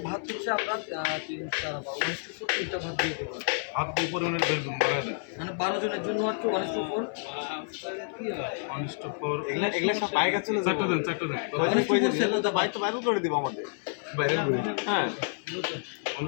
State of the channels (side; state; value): right; silent; 58 dB below the other